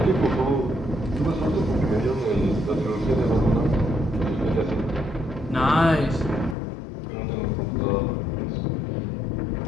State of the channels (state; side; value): drops out; right; at 6.6 s